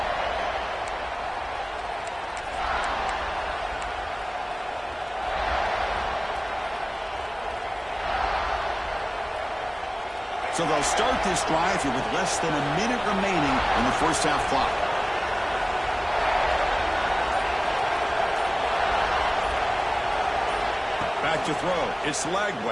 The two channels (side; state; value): both; identical; correlation 1.00